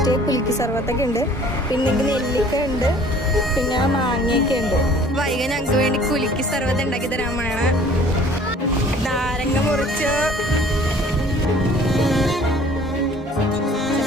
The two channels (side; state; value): both; normal; correlation 0.52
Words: കുലുക്കി സർവത്തൊക്കെ ഉണ്ട്, പിന്നെ നെല്ലിക്ക ഉണ്ട്, പിന്നെ മാങ്ങയൊക്കെ ഉണ്ട്. വൈകി ഞങ്ങൾക്ക് വേണ്ടി കുലുക്കി സർവത്ത് ഉണ്ടാക്കി തരാൻ വേണം. നാരങ്ങ മുറിച്ച്